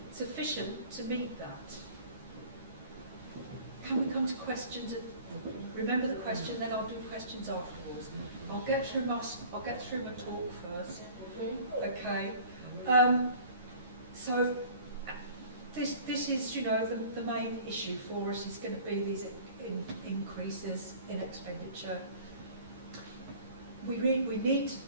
sufficient to meet that. Can we come to questions? Remember the question, then I'll do questions afterwards. I'll get through my talk first. Okay. So this is, you know, the main issue for us is going to be these increases in expenditure. We need to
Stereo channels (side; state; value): both; inverted; correlation -0.47